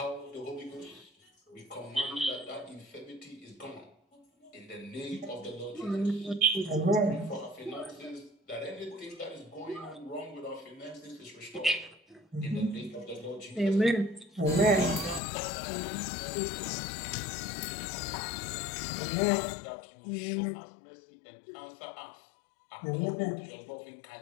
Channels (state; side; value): drops out; right; at 15.2 s